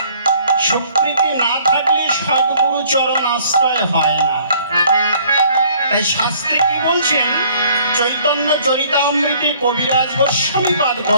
স্বীকৃতি না থাকলে সদ্গুরু চরণ আশ্রয় হয় না। তাই শাস্ত্রে কি বলছেন, চৈতন্য চরিতামৃতে কবিরাজ গোস্বামীপাদ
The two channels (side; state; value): both; inverted; correlation -0.58